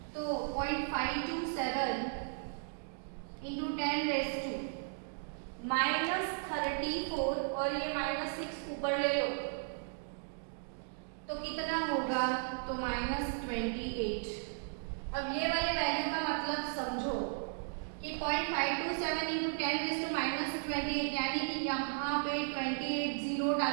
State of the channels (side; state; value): left; silent; digital silence